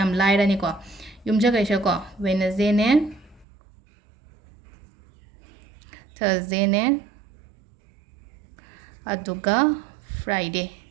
लाइरानी को युमजा कैसा को वेडनेसडे ने थर्सडे ने अदुगा फ्राइडे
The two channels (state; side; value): drops out; left; at 3.5 s